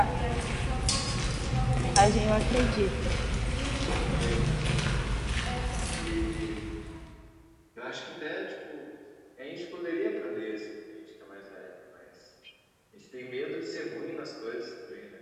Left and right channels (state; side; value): identical; both; correlation 1.00